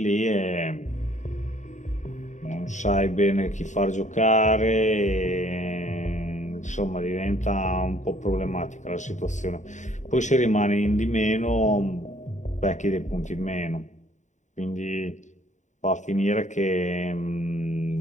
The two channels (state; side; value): late; right; 0.35 ms